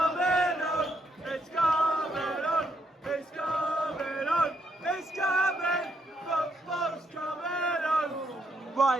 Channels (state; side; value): normal; both; correlation 0.76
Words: on. It's coming on. It's coming on. It's coming. Football's coming on.